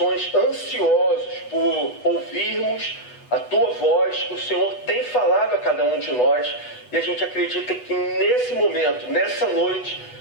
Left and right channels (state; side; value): late; right; 8.1 ms